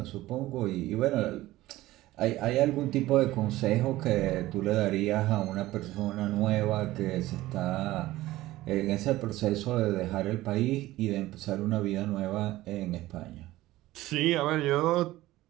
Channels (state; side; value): quieter; left; 16.8 dB